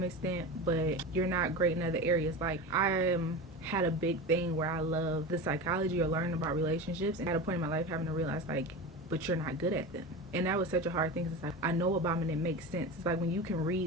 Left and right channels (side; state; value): both; normal; correlation 0.27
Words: extent, but you're not great in other areas. Like I am had a big thing where I love the psychology or learning about relationships, and at a point in my life having to realize, like, but you're not good at them. And that was such a hard thing. It's like, I know about them and it makes sense. It's like when you can